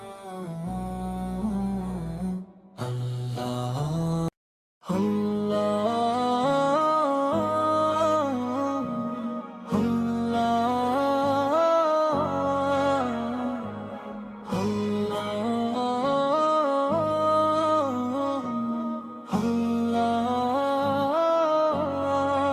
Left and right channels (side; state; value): both; identical; correlation 1.00